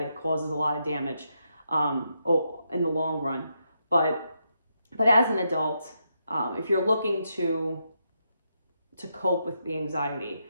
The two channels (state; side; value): inverted; both; correlation -0.81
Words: it causes a lot of damage in the long run. But as an adult, if you're looking to cope with the anxiety,